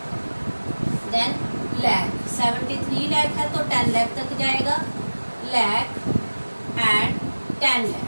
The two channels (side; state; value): both; inverted; correlation -1.00